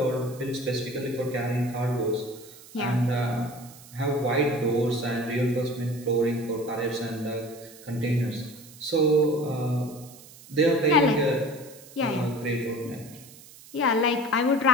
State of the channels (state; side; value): noise; right; hiss, 20 dB below the sound